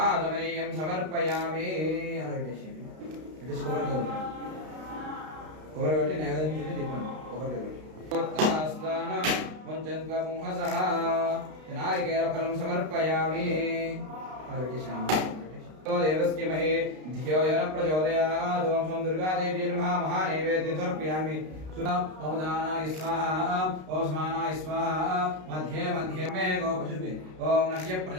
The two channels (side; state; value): left; late; 32 ms